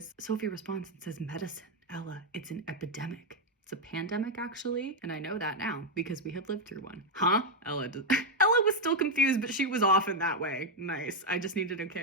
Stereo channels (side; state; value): both; normal; correlation 0.02